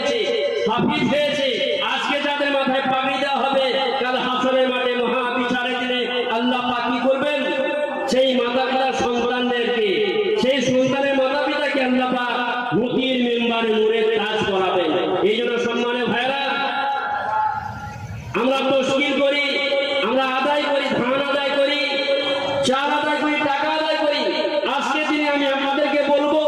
হাফিজ হয়েছে, আজকে যাদের মাথায় পাগড়ি দেওয়া হবে, কাল হাসরের মাঠে মহা বিচারের দিনে আল্লাহ পাক কি করবেন? সেই মাতা পিতার সন্তানদেরকে, সেই সন্তানের মাতা পিতাকে আল্লাহ পাক মুক্তির মেম্বারে নূরের তাজ করাবেন। এই জন্য সম্মানের ভাইরা, আমরা তশকিল করি, আমরা আদায় করি, ধান আদায় করি, চাল আদায় করি, টাকা আদায় করি। আজকে দিনে আমি আপনাদেরকে বলবো,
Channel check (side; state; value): both; identical; correlation 1.00